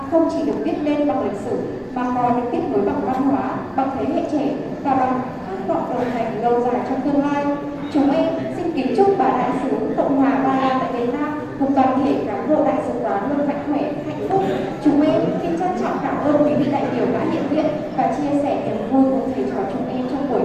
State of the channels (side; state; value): both; identical; correlation 1.00